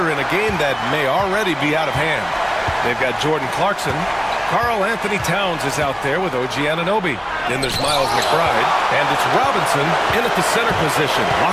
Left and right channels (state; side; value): identical; both; correlation 1.00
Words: in a game that may already be out of hand. They've got Jordan Clarkson. Karl Anthony Towns is out there with OG Anunoby. Then there's Miles McBride. And it's Robinson in at the center position,